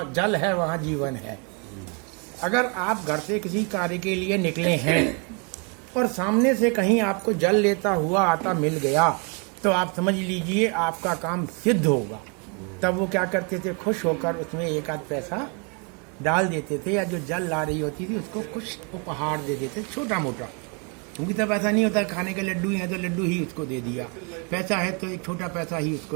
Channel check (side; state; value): left; quieter; 34.7 dB